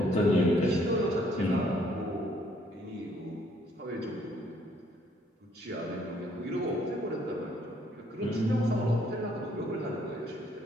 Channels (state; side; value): normal; both; correlation 0.65